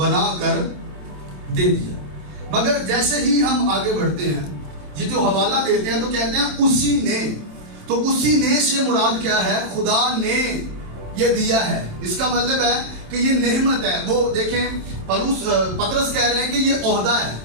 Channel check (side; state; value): left; late; 27 ms